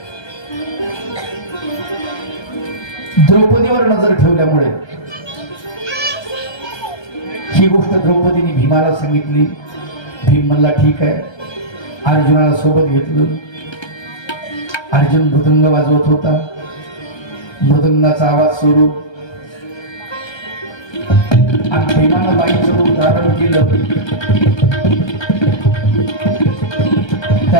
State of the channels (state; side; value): late; right; 1.3 ms